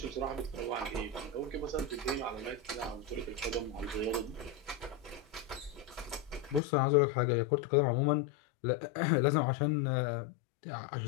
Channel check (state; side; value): drops out; right; at 6.6 s